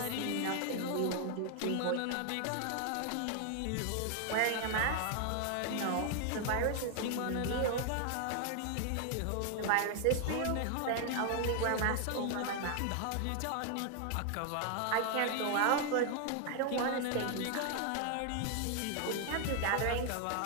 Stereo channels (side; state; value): both; different; correlation 0.00